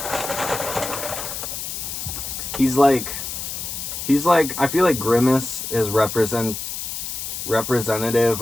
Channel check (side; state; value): left; noise; hiss, 6 dB below the sound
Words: He's like, I feel like Grimace is representative